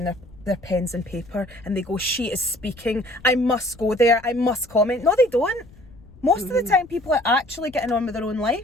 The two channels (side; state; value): left; noise; rumble, 23 dB below the sound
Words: their pens and paper and they go, she is speaking, I must go there, I must comment. No, they don't. Most of the time people are actually getting on with their own